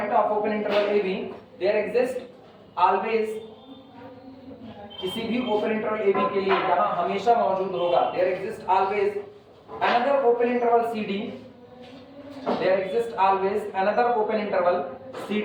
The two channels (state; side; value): identical; both; correlation 1.00